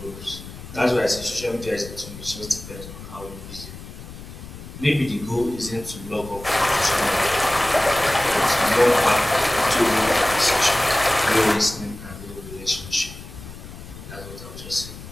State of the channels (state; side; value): noise; left; rumble, 14 dB below the sound